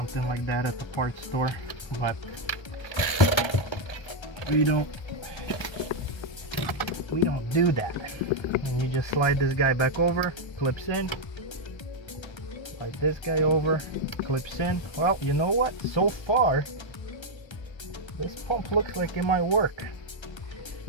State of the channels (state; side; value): late; right; 1.3 ms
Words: like that at the parts store, but we don't do that. And you just slide this guy back over, clips in, slide this guy over, clips in. Well, you know what, so far this pump looks like it might work.